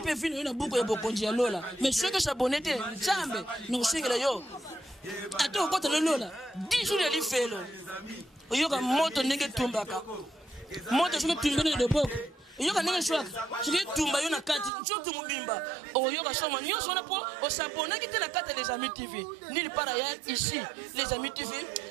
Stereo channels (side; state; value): left; drops out; at 14.7 s